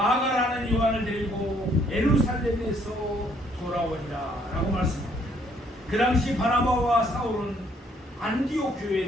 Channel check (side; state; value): both; normal; correlation 0.66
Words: 요한을 데리고 예루살렘에서 돌아오니라 라고 말씀합니다. 그 당시 바나바와 사울은 안디옥